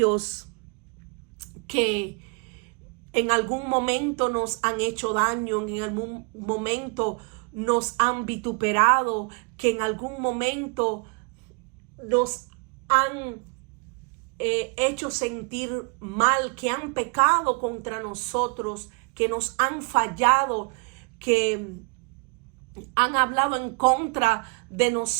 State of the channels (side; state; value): left; quieter; 32.1 dB